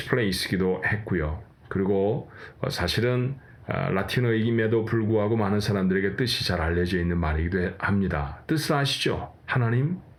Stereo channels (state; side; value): identical; both; correlation 1.00